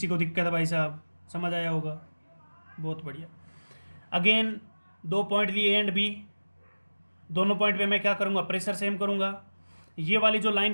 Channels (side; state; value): both; inverted; correlation -1.00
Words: को दिक्कत है भाई साहब? समझ आया होगा, बहुत बढ़िया। अगेन 2 पॉइंट लिए एंड बी, दोनों पॉइंट पे मैं क्या करूँगा? प्रेशर सेम करूँगा। ये वाली जो